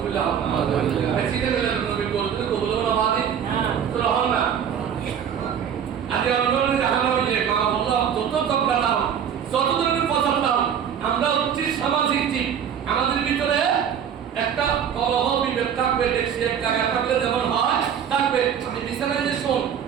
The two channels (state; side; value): quieter; left; 8.4 dB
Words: শীতের মিলাদের নবীর গরু দিতে কবুল হলো না তো রহমান না। আজকে অন্যদের দেখানো হইলে মা বললো যত তকরা দাও যত ধরনের পছন্দ দাও, আমরা হচ্ছি সামাজিক জীব। আমাদের ভিতরে একটা কলহ বিভেদ থাকবে, দেখছি এক জায়গায় থাকলে যেমন হয় থাকবে। আমি বিছানায় যে শোন